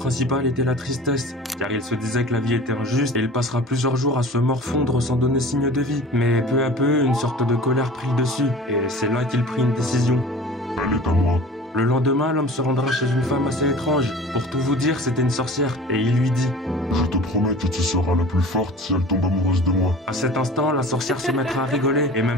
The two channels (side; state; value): both; normal; correlation 0.41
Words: était la tristesse, car il se disait que la vie était injuste et il passera plusieurs jours à se morfondre sans donner signe de vie. Mais peu à peu, une sorte de colère prit le dessus, et c'est là qu'il prit une décision. Elle est à moi. Le lendemain, l'homme se rendra chez une femme assez étrange. Pour tout vous dire, c'était une sorcière, et il lui dit: Je te promets que tu seras la plus forte si elle tombe amoureuse de moi. À cet instant, la sorcière se mettra à rigoler, et